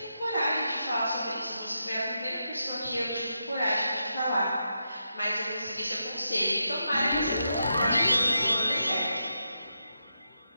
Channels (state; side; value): inverted; both; correlation -0.85